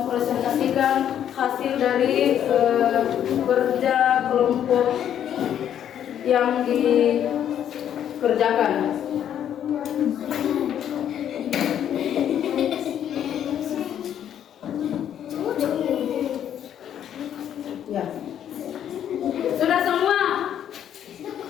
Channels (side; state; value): right; quieter; 9.9 dB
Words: hasil dari kerja kelompok yang dikerjakan. Ya. Sudah semua?